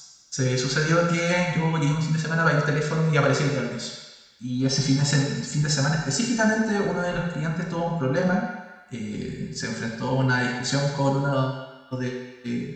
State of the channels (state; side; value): identical; both; correlation 1.00